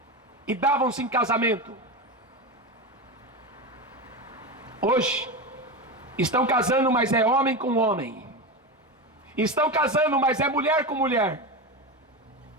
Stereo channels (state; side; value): normal; both; correlation 0.19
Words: e davam-se em casamento. Hoje estão casando, mas é homem com homem. Estão casando, mas é mulher com mulher.